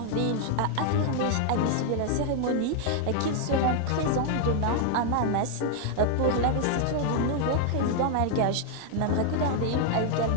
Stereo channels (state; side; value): different; both; correlation 0.00